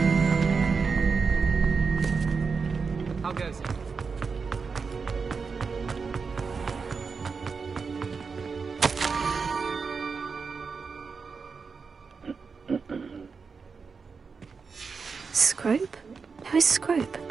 How goes it? Scrope? Who is Scrope?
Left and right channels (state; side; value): quieter; left; 5.2 dB